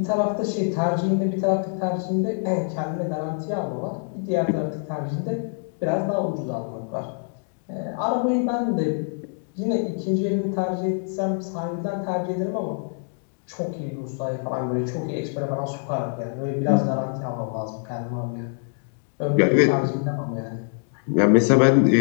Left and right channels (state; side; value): silent; right; 62 dB below the other